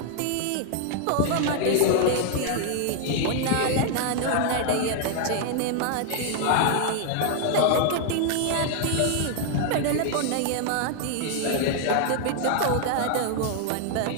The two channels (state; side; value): different; both; correlation 0.00